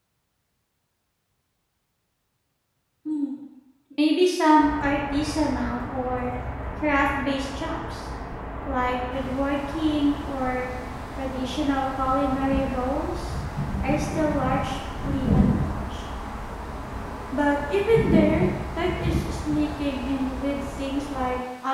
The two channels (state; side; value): identical; both; correlation 1.00